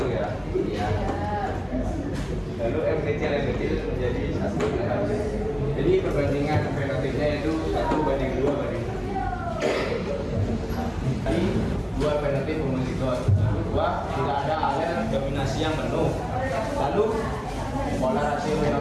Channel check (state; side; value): identical; both; correlation 1.00